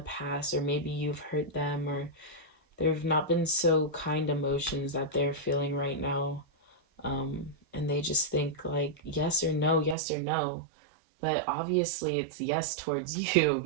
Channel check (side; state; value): left; drops out; at 10.0 s